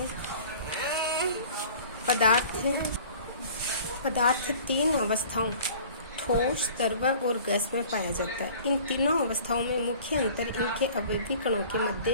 पदार्थ 3 अवस्थाओं ठोस, द्रव और गैस में पाया जाता है। इन तीनों अवस्थाओं में मुख्य अंतर इनके अवयवी कणों के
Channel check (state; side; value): inverted; both; correlation -0.47